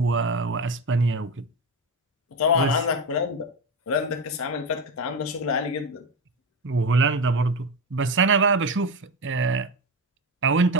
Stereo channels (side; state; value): both; normal; correlation 0.18